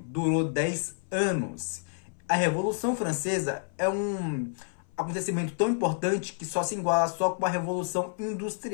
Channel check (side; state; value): right; silent; 57 dB below the other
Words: 10 anos. A Revolução Francesa é um acontecimento tão importante que só se iguala só com a Revolução